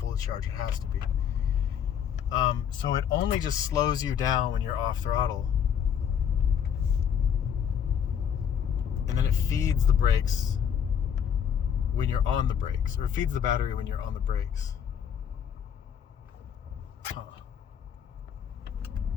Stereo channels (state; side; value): quieter; right; 8.3 dB